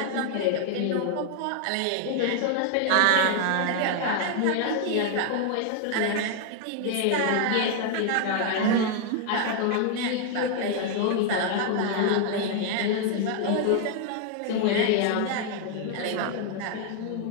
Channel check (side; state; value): both; different; correlation 0.00